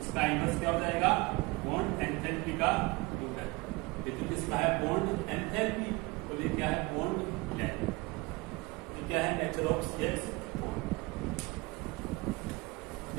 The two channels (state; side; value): quieter; left; 24.8 dB